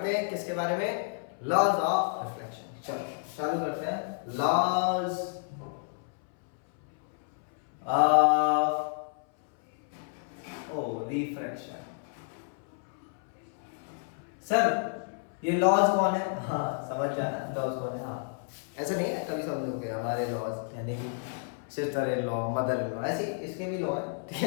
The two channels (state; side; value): silent; right; 57 dB below the other